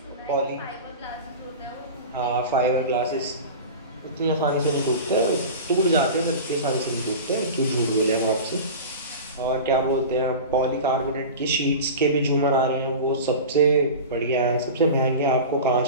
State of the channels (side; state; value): both; inverted; correlation -0.31